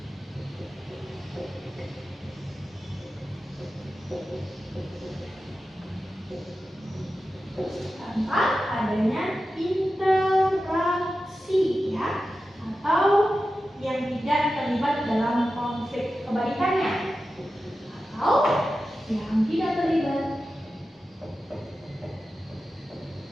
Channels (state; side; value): normal; both; correlation 0.92